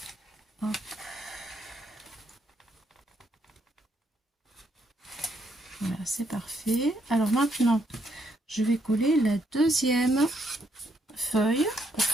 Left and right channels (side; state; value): both; normal; correlation 0.74